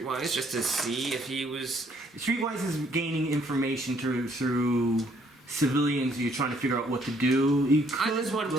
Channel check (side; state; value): both; normal; correlation 0.66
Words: just to see if he was? Streetwise is gaining information through civilians. You're trying to figure out what to do. You could, I just wanted to